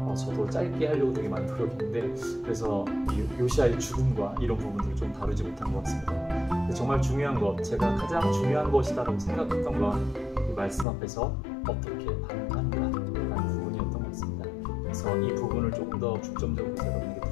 저도 짧게 하려고 되게 많이 노력했는데 그래서 이 요시아의 죽음과 이런 부분들을 좀 다루지 못한 것 같습니다. 근데 정말 중요한 것, 제가 가장 중요한 것이다라고 생각했던 건 이 말씀 앞에서 어떻게 반응하는가라는 부분이었던 것 같습니다. 그래서 이 부분을 조금 더 중점적으로 여러분에게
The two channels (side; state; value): right; drops out; at 10.9 s